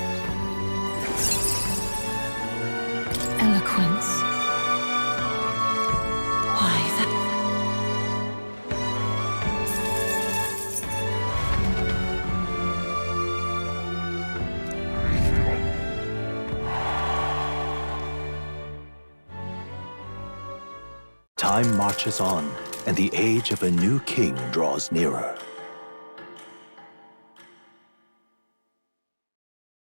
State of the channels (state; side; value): inverted; both; correlation -1.00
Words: Eloquence. Why, that... Time marches on, and the age of a new king draws nearer.